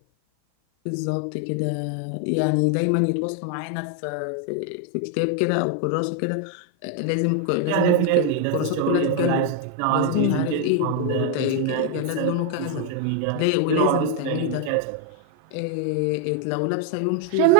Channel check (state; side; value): different; both; correlation 0.01